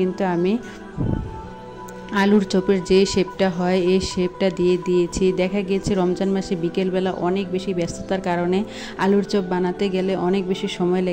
কিন্তু আমি আলুর চপের যে শেপটা হয় এই শেপটা দিয়ে দিয়েছি। দেখা গিয়েছে রমজান মাসে বিকেলবেলা অনেক বেশি ব্যস্ততার কারণে আলুর চপ বানাতে গেলে অনেক বেশি সময়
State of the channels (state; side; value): identical; both; correlation 1.00